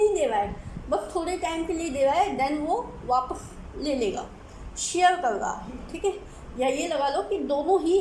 दे रहा है, बस थोड़े टाइम के लिए दे रहा है, देन वो वापस ले लेगा, शेयर कर रहा है। ठीक है, या ये लगा लो कि दोनों ही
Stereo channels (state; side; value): identical; both; correlation 1.00